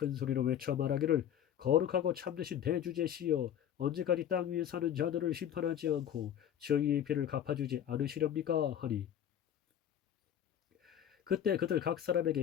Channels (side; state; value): right; quieter; 9.9 dB